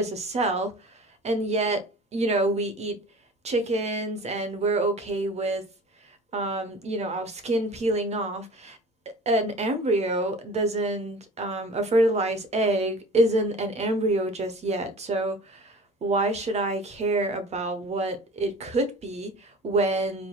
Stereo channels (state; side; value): normal; both; correlation 0.41